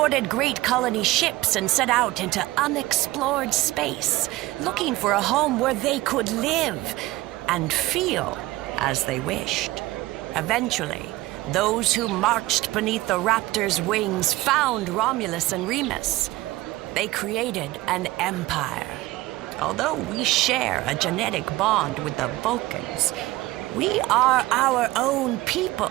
great colony ships and set out into unexplored space, looking for a home where they could live and feel as they wished. Eventually, those who marched beneath the Raptor's wings found Romulus and Remus. They created an empire. Although we share a genetic bond with the Vulcans, we are our own people.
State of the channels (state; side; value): quieter; left; 18.3 dB